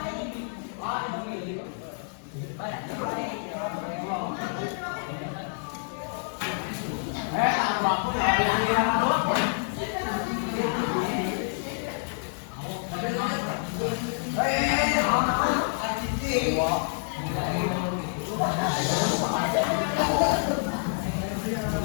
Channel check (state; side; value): silent; right; digital silence